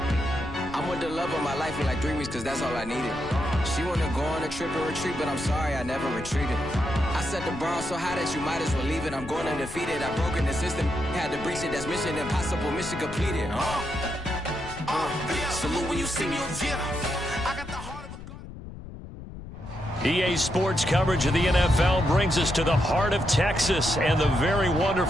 I'm with the love of my life for like 3 weeks, cause that's all I needed. She wanna go on a trip and retreat, but I'm sorry, I never retreated. I set the bar so high that you might as well leave it. I'm going undefeated, I've broken the system, had to breach it. That's mission impossible, mission completed. Salute when you see me. I got the heart of a god. EA Sports coverage of the NFL brings us to the heart of Texas and the very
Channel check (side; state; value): left; noise; rumble, 13 dB below the sound